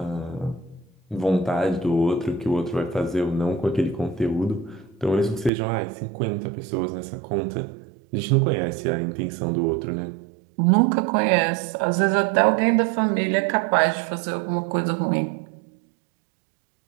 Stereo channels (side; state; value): left; drops out; at 5.5 s